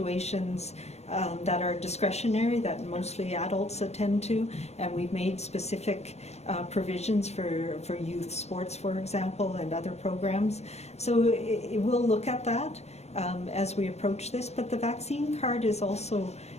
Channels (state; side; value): late; right; 0.31 ms